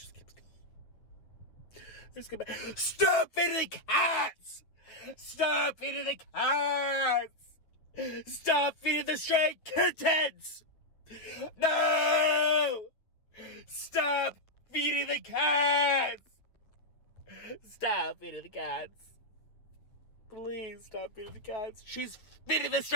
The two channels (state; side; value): late; right; 9.1 ms